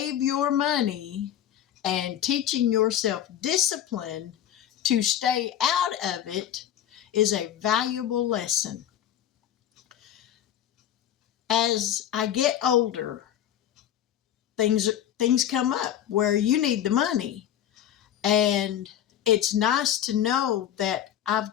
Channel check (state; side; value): quieter; right; 10.8 dB